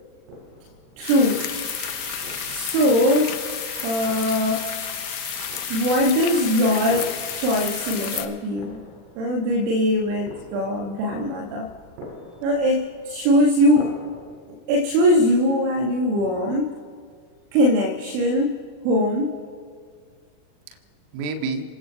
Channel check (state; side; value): late; left; 40 ms